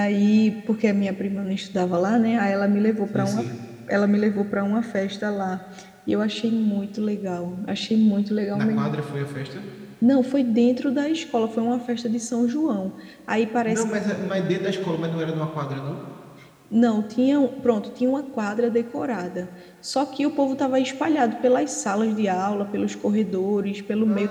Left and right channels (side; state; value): both; identical; correlation 1.00